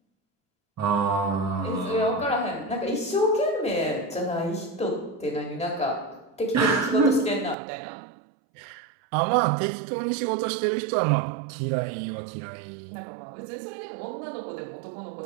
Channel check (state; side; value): drops out; left; at 7.6 s